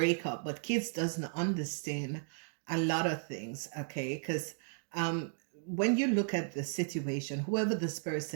up. But kids doesn't understand a lot of things. Okay, because when you look at the situation, whoever this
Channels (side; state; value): left; silent; digital silence